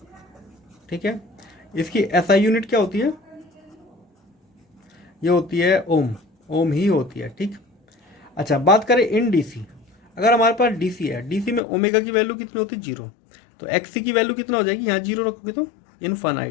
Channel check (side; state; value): right; drops out; at 11.6 s